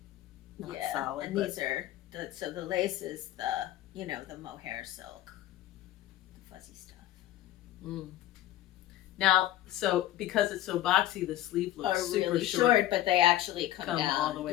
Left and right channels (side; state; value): right; quieter; 14.1 dB